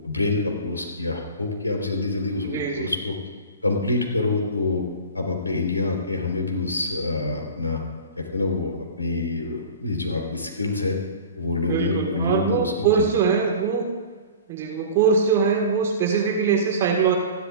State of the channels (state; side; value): inverted; both; correlation -0.37